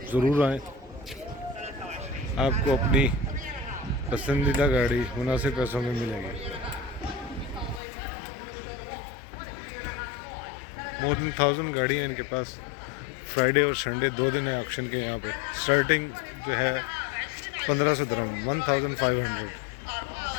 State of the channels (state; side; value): drops out; right; at 7.8 s